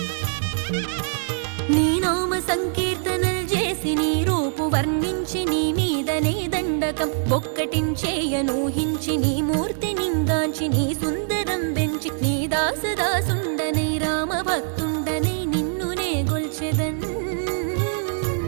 నీ నామ సంకీర్తనలు చేసి నీ రూపు వర్ణించి నీ మీదనే దండకం ఒక్కటించేయనూహించి నీ మూర్తి నింగాంచి నీ సుందరం పెంచి నీ దాసదాసుండనై రామ భక్తుండనై నిన్నునే గొల్చెదన్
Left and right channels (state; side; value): silent; left; digital silence